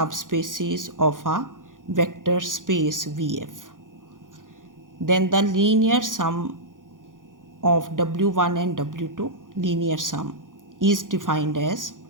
of a vector space VF. Then the linear sum of W1 and W2, linear sum, is defined as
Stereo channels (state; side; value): late; left; 0.89 ms